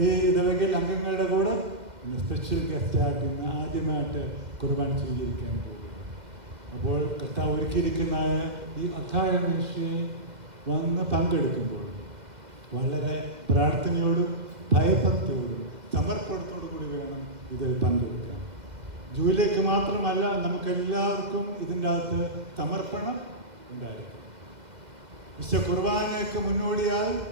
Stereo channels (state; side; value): late; left; 2.0 ms